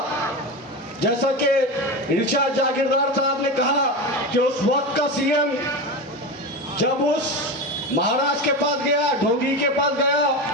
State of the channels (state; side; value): normal; both; correlation 0.22